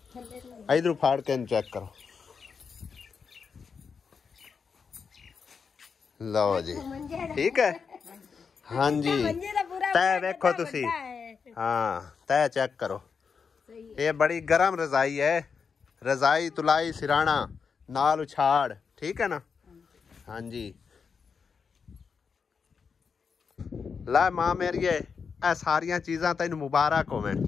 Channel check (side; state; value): right; quieter; 5.8 dB